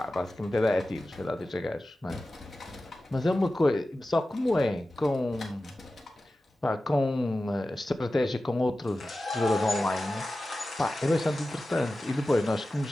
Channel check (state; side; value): normal; both; correlation 0.95